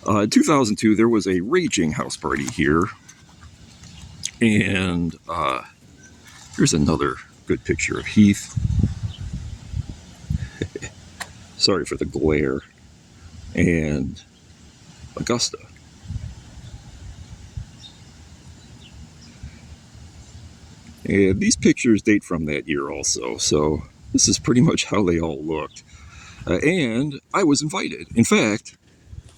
In 2002, there was a raging house party here, and here's another good picture of Heath. Sorry for the glare. And Augusta. And these pictures date from that year also, so this is pretty much how they all looked. And I was invited. In fact,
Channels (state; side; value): identical; both; correlation 1.00